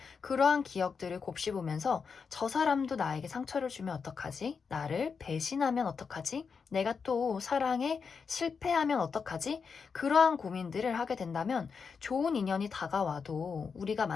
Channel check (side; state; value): right; quieter; 5.7 dB